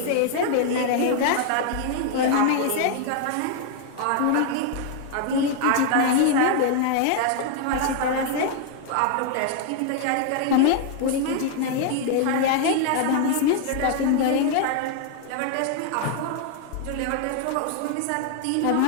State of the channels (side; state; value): both; different; correlation 0.00